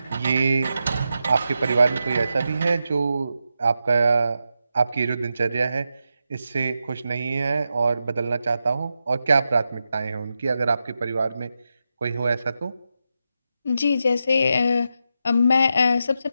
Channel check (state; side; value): inverted; both; correlation -0.87